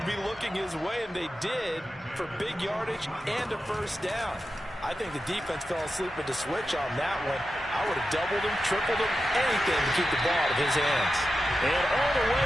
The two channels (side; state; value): both; normal; correlation 0.91